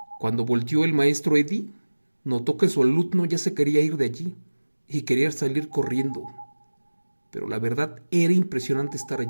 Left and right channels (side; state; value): both; inverted; correlation -1.00